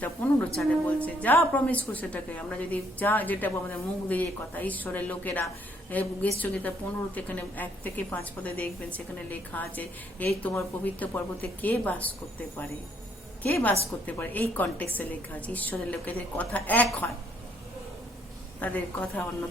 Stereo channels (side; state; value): both; normal; correlation 0.68